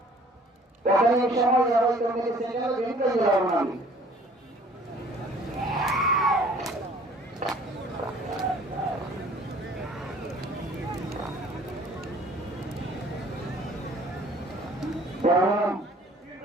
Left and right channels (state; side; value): normal; both; correlation 0.53